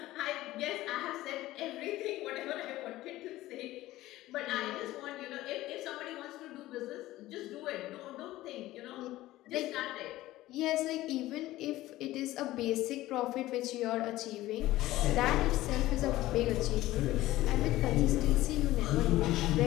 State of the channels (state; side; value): quieter; right; 16.4 dB